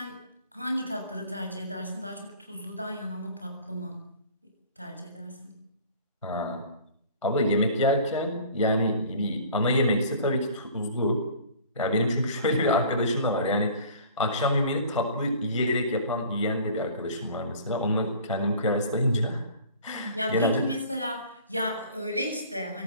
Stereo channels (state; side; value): inverted; both; correlation -0.47